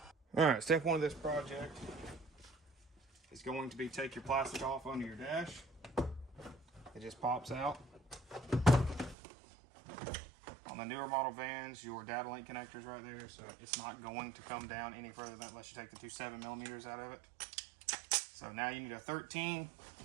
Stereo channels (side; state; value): left; drops out; at 9.2 s